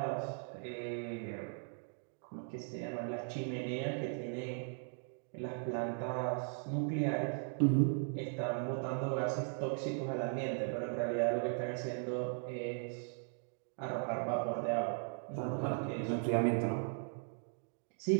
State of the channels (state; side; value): silent; left; 52 dB below the other